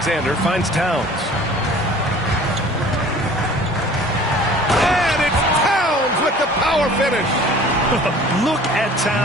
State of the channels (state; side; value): normal; both; correlation 0.47